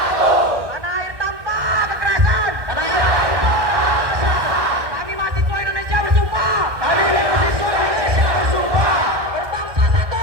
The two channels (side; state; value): left; late; 1.6 ms